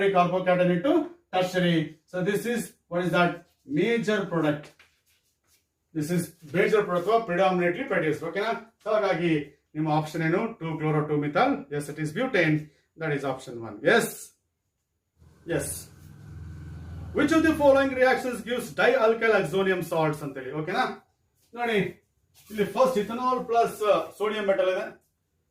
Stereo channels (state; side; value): identical; both; correlation 1.00